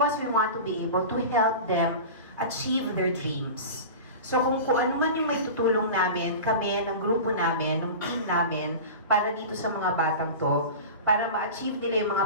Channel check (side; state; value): both; inverted; correlation -0.32